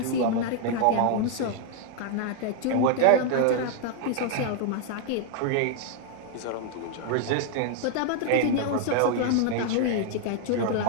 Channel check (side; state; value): both; different; correlation 0.00